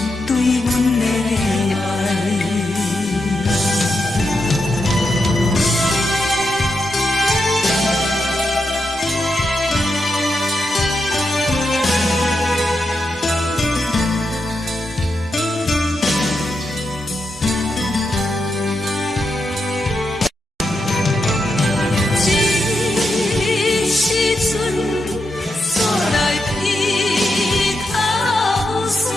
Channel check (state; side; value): normal; both; correlation 0.85